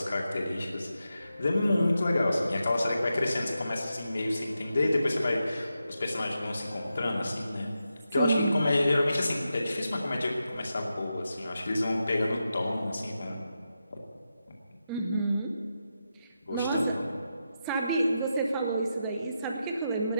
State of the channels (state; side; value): inverted; both; correlation -0.88